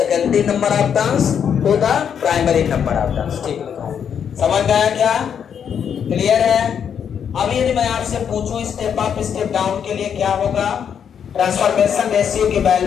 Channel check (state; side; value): quieter; right; 7.9 dB